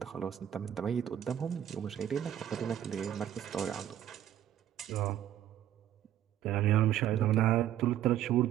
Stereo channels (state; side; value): quieter; left; 11.3 dB